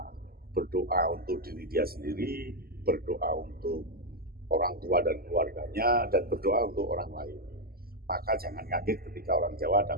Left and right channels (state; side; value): late; left; 0.44 ms